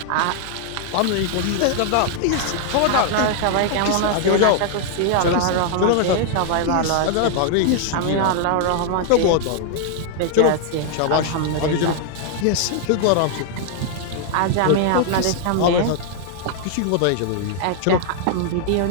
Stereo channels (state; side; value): different; both; correlation 0.00